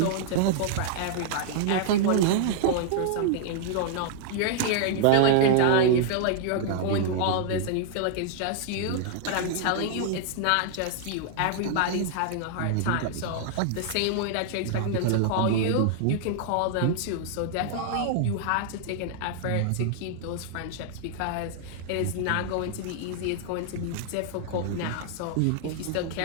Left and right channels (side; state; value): both; different; correlation -0.01